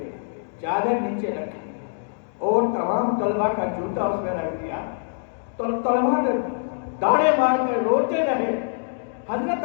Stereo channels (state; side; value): silent; right; digital silence